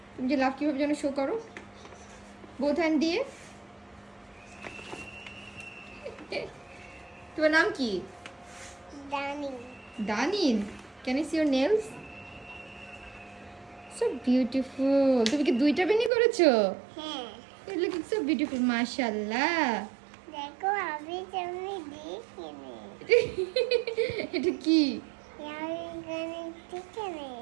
তুমি যে লাভ কিভাবে যেন শো করো, বোথ হ্যান্ড দিয়ে। তোমার নাম কি? Danny. দানিন। Can I see your nails? So beautiful. তুমি কি দুইটা বেনি করেছো? হ্যাঁ, ইট লুকিং সো বিউটিফুল মাশাআল্লাহ। দেখো আমি তুমি দেখিনি। এটা কি? আমি এখানে দেখিনি।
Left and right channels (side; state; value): left; drops out; at 16.1 s